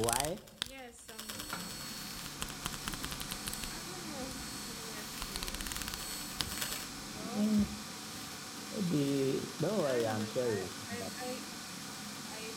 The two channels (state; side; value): identical; both; correlation 1.00